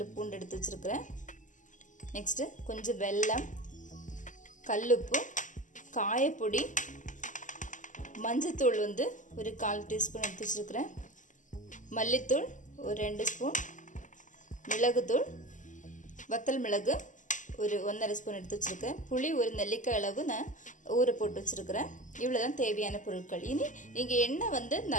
பூண்டு எடுத்து வச்சிருக்கிறேன். நெக்ஸ்ட் கொஞ்சம் வெல்லம், கல்லுப்பு, காயப்பொடி, மஞ்சத்தூள் ஒரு 1/4 டீஸ்பூன் எடுத்து வச்சிருக்கிறேன். மல்லித்தூள் ஒரு 2 ஸ்பூன், மிளகுத்தூள், வத்தல் மிளகு ஒரு 1/2 ஸ்பூன் எடுத்து வச்சிருக்கேன். புளி ஒரு நெல்லிக்காய் அளவு நான் ஊற போட்டு வச்சிருக்கிறேன். இவ்வளோதான் தேவையான பொருட்கள். இனி நீங்கள் எண்ணெய்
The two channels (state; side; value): late; right; 0.37 ms